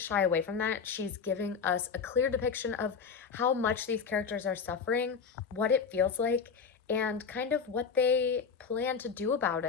shy away from that. She's giving us a clear depiction of how much these characters are suffering, what it feels like, and kind of what they plan to do about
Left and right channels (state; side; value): quieter; right; 6.0 dB